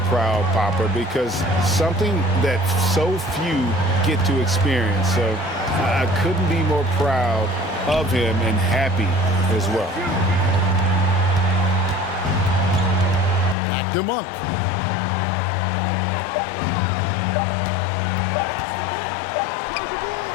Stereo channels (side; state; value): right; drops out; at 13.6 s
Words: proud papa because something that so few get to experience. So I couldn't be more proud of him and happy as well. Back to Monk.